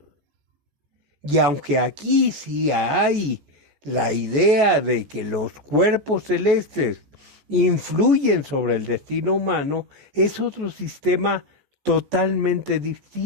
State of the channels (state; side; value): late; left; 14 ms